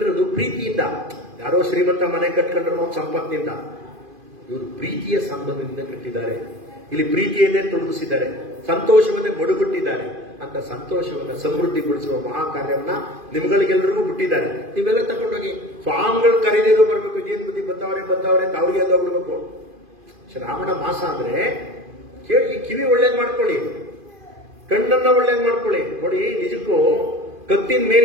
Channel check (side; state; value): left; late; 2.5 ms